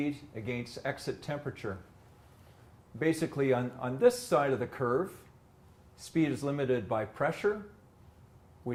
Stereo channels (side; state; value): both; identical; correlation 1.00